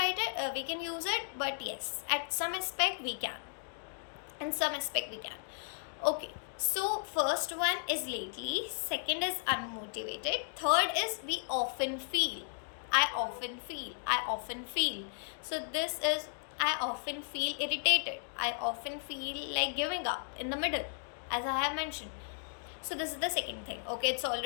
it, we can use it, but yes, at some aspect we can. In some aspect we can. Okay, so first one is lately, second is unmotivated, third is we often feel. I often feel. So this is I often feel irritated. I often feel like giving up in the middle, as I have mentioned. So this is the second thing. Okay, it's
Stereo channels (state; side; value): silent; right; digital silence